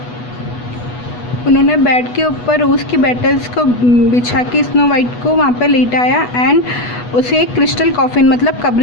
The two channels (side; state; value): right; late; 8.2 ms